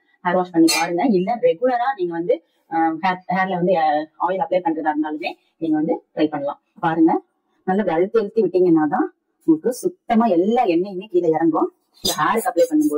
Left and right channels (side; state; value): both; identical; correlation 1.00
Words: ஹேர் வாஷ் பண்ணி பாருங்க. இல்ல ரெகுலரா நீங்க வந்து ஹேர்ல வந்து ஆயில் அப்ளை பண்றதா இருந்தாலுமே நீங்க வந்து ட்ரை பண்ணலாம். பாருங்க, நல்லா அழுத்தி விட்டீங்கன்னா தான் உங்களுக்கு சுத்தமா எல்லா எண்ணெயுமே கீழே இறங்கும். ஹேருக்கு அப்ளை